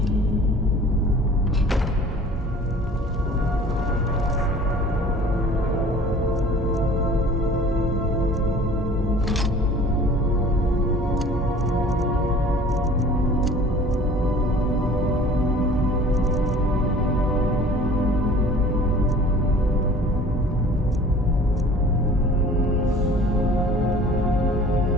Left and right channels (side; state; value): both; normal; correlation 0.47